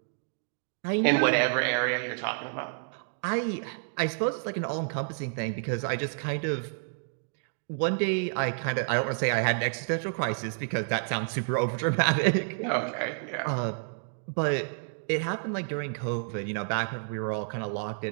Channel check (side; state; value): left; silent; digital silence